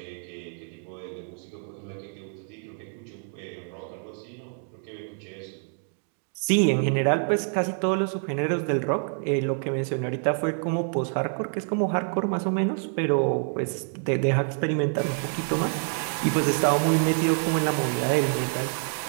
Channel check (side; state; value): left; silent; 57 dB below the other